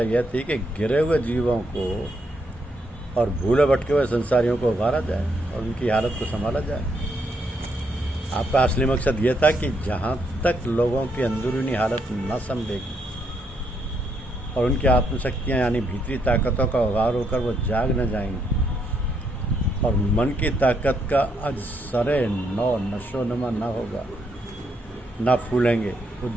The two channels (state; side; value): normal; both; correlation 0.76